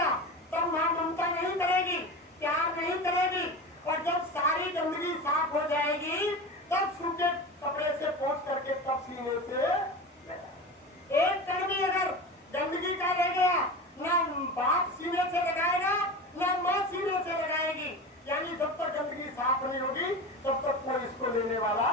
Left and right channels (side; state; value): both; normal; correlation 0.29